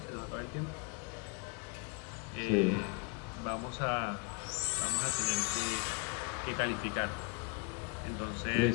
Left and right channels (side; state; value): right; quieter; 32.3 dB